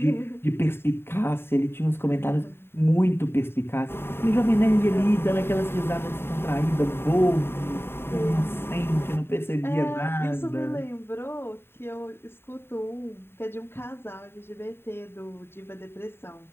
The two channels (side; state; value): right; late; 0.11 ms